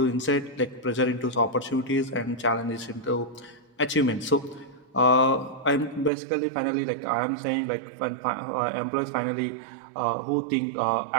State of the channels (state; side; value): drops out; left; at 6.1 s